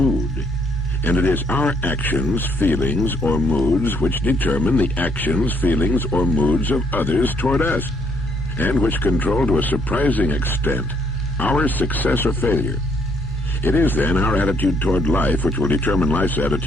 And it is our actions, feelings, or moods which determine the actions, feelings, or moods of others toward us, and which control to a surprising extent our success or failure. It is then our attitude toward life which will determine life's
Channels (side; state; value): both; normal; correlation 0.69